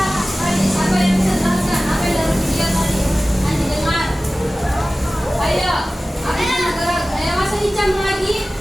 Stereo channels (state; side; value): normal; both; correlation 0.97